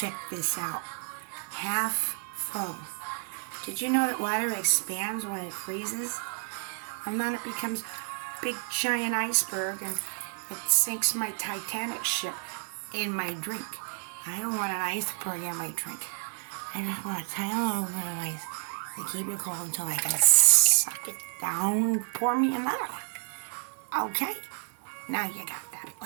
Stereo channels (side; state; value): left; silent; 58 dB below the other